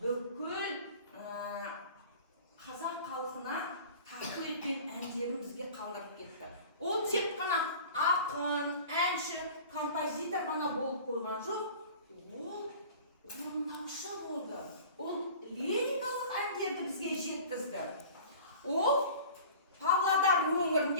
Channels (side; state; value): both; inverted; correlation -0.42